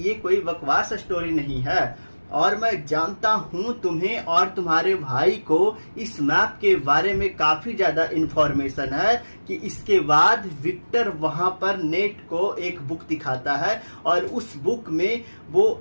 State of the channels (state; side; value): inverted; both; correlation -1.00